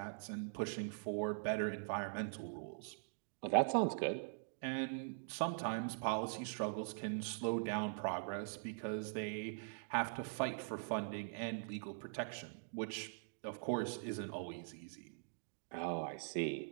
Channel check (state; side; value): silent; left; digital silence